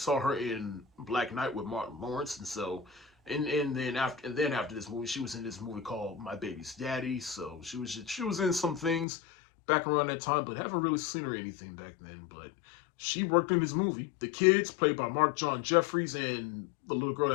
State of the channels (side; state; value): right; drops out; at 9.1 s